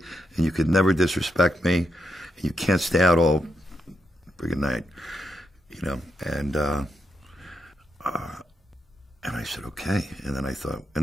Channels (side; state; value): both; normal; correlation 0.82